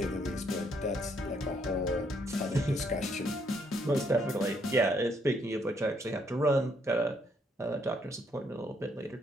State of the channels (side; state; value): both; normal; correlation 0.71